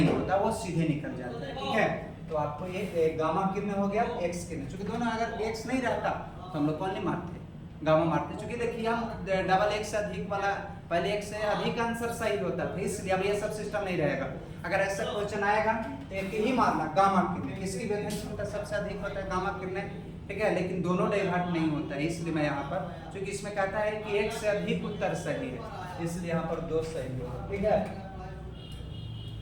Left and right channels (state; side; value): identical; both; correlation 1.00